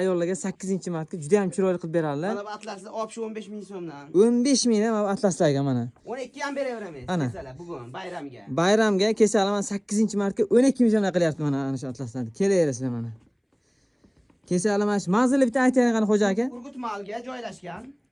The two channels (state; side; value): identical; both; correlation 1.00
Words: 8-martga juda ham chiroyli qilib beradilar. Mana bu atlasni olib shu 15 ming so'mdan. 15 mingdan mana atlaslarga mana. 12 ham beraveramiz. Ana. Kesalar bugun bayramga. Bayramga kechalar mana 8-martga 12 ming so'mdan qilyapti mana ana shu atlaslarni. Kelaverasizlar mana. Kechalar mana shu manzilni bitta aytaylik qani xo'ja aka. Urgut mahalga joylashgan.